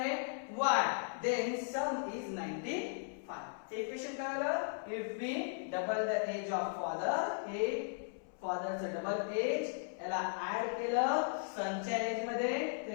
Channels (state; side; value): silent; right; 53 dB below the other